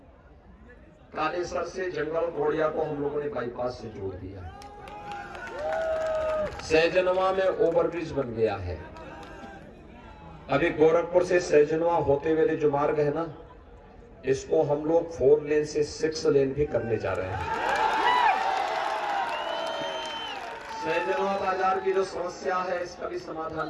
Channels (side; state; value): both; identical; correlation 1.00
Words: कालेसर से जंगल घोड़िया को हम लोगों ने बाईपास से जोड़ दिया। सहजनवा में ओवरब्रिज बन गया है। अभी गोरखपुर से सहजनवा होते हुए जो मार्ग है ना, इसको हम लोग 4 लेन से 6 लेन भी करने जा रहे हैं। सहजनवा बाजार की जो समस्या है इसका भी